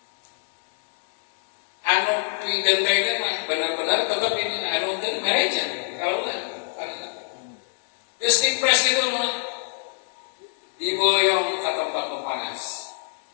Anu pidentengna mah benar-benar tetap ini anu teh mereja kalau lah. Geus dipres gitu mah diboyong ke tempat nu panas.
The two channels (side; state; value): right; silent; 62 dB below the other